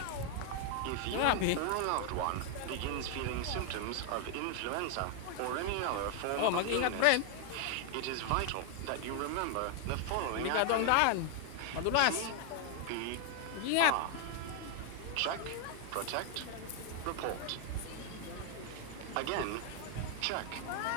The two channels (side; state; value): both; different; correlation 0.00